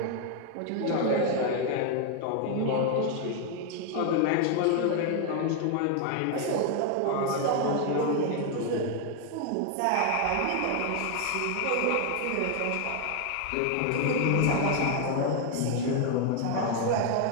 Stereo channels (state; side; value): different; both; correlation 0.00